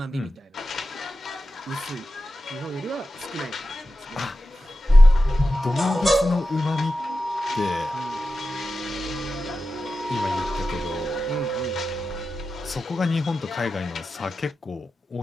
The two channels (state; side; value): normal; both; correlation 0.92